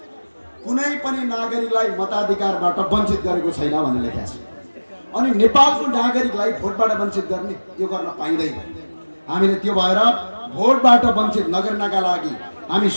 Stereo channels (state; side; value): inverted; both; correlation -1.00